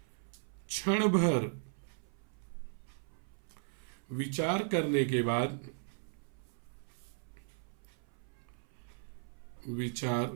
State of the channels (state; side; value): silent; left; 53 dB below the other